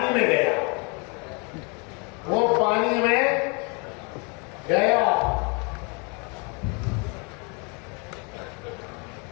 میں گیا، وہ پانی میں گیا۔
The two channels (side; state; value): right; quieter; 33.1 dB